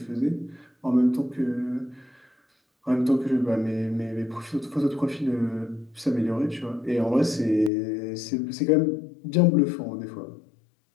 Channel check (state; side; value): drops out; right; at 7.7 s